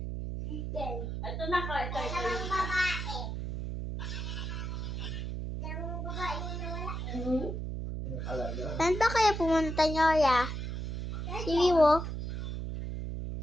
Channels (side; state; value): right; noise; hum, 4 dB below the sound